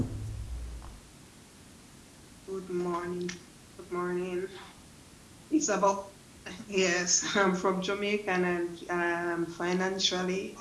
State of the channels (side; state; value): both; identical; correlation 1.00